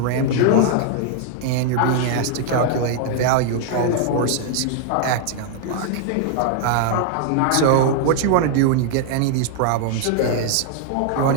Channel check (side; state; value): both; different; correlation 0.00